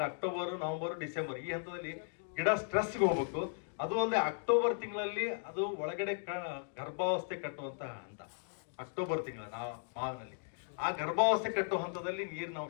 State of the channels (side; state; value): right; silent; digital silence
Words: ಅಕ್ಟೋಬರ್, ನವೆಂಬರ್, ಡಿಸೆಂಬರ್ ಈ ಹಂತದಲ್ಲಿ ಗಿಡ ಸ್ಟ್ರೆಸ್ಗೆ ಹೋಗ್ಬೇಕು. ಅದು ಅಲ್ಲದೆ ಅಕ್ಟೋಬರ್ ತಿಂಗಳಲ್ಲಿ ಅದು ಒಳಗಡೆ ಗರ್ಭಾವಸ್ಥೆ ಕಟ್ಟುವಂತ ಹಂತ. ಅಕ್ಟೋಬರ್ ತಿಂಗಳ ಮಾವಿನಲ್ಲಿ ಆ ಗರ್ಭಾವಸ್ಥೆ ಕಟ್ಟುವ ಹಂತದಲ್ಲಿ ನೀರಿನ